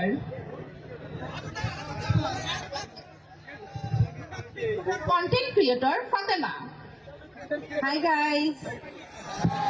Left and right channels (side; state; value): both; identical; correlation 1.00